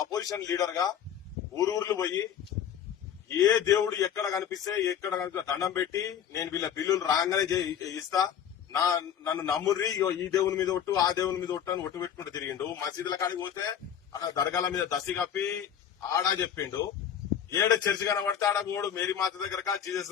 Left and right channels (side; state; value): right; quieter; 9.1 dB